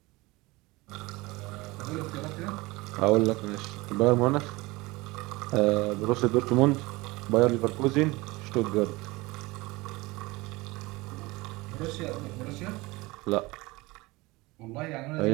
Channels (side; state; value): left; quieter; 22.2 dB